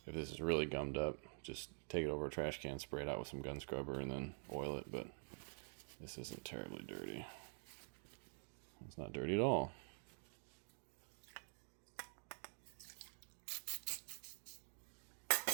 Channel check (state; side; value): silent; left; digital silence